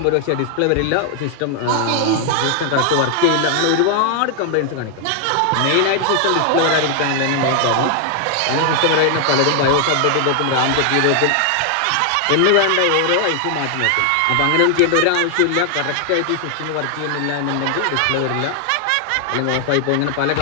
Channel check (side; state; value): both; different; correlation 0.00